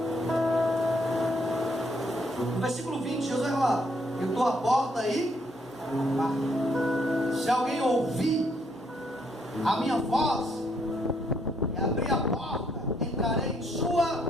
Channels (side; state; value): both; normal; correlation 0.71